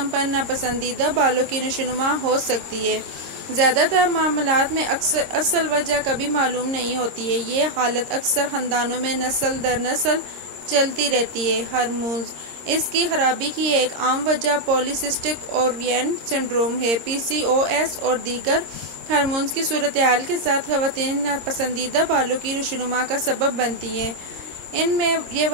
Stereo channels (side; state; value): left; late; 26 ms